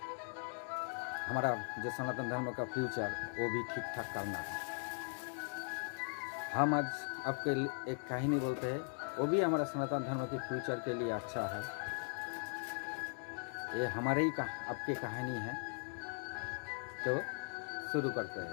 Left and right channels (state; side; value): silent; right; 51 dB below the other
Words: हमारा जो सनातन धर्म का फ्यूचर वो भी ठीक ठाक करना है। हम आज आपके एक कहानी बोलते हैं, वो भी हमारा सनातन धर्म के फ्यूचर के लिए अच्छा है। ये हमारे ही आपकी कहानी है। तो शुरू करते